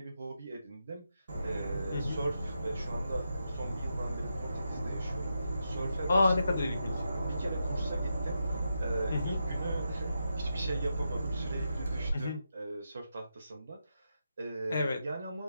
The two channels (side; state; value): both; inverted; correlation -0.85